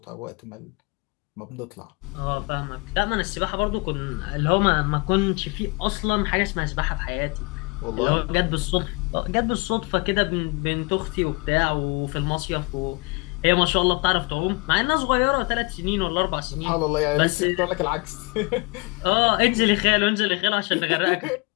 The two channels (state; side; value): quieter; right; 28.8 dB